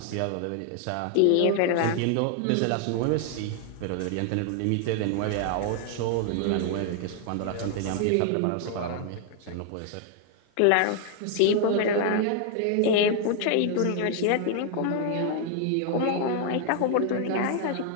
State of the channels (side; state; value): both; different; correlation 0.00